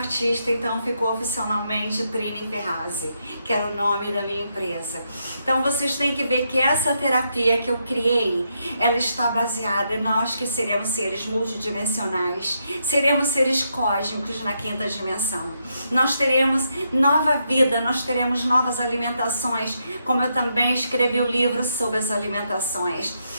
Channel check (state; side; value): inverted; both; correlation -0.80